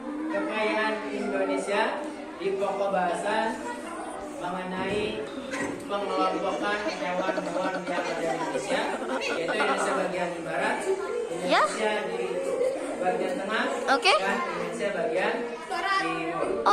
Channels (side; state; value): both; identical; correlation 1.00